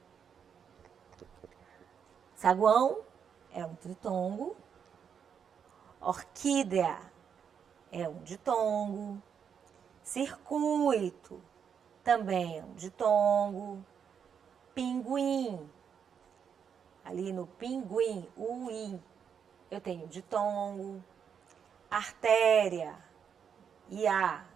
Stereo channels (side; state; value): left; quieter; 7.4 dB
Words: Saguão é um tritongo. Orquídea é um ditongo. Circuito também é um ditongo. Pinguim, ali no pinguim, o i, eu tenho ditongo. Artéria, ia,